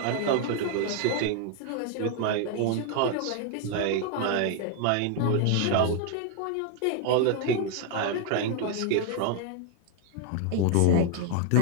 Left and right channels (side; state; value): both; different; correlation 0.00